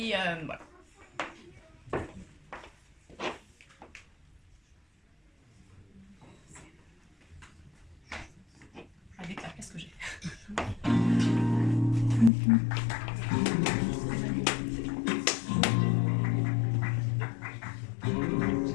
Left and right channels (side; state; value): right; drops out; at 12.3 s